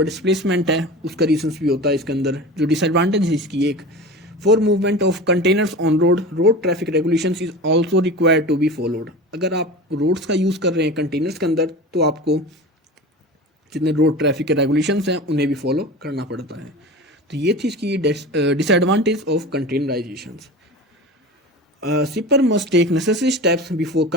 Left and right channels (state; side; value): normal; both; correlation 0.32